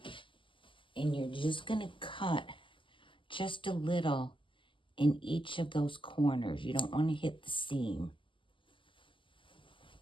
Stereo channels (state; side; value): late; right; 0.25 ms